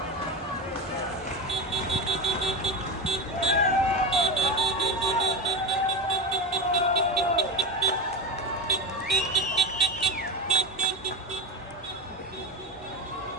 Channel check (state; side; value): normal; both; correlation 0.21